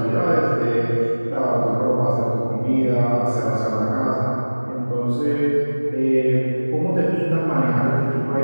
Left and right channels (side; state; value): both; inverted; correlation -1.00